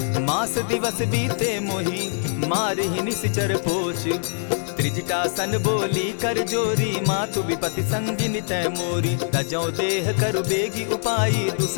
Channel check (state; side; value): silent; right; digital silence